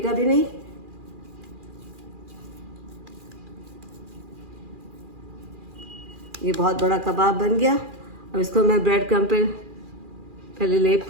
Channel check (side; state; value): left; late; 2.4 ms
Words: भी नहीं। ये बहुत बड़ा कबाब बन गया। अब इसको मैं ब्रेड क्रम्ब पे पहले लेप